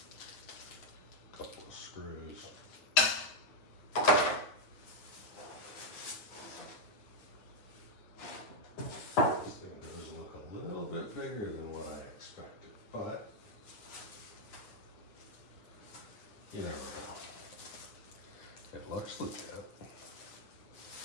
a couple of screws. This thing does look a little bit bigger than what I expected, but you never know. It looks legit.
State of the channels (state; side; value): late; right; 9.5 ms